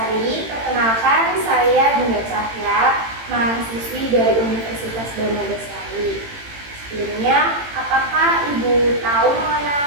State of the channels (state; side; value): late; left; 18 ms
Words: perkenalkan saya Dinda Cahya, mahasiswi dari Universitas Danadasari. Sebelumnya, apakah Ibu tahu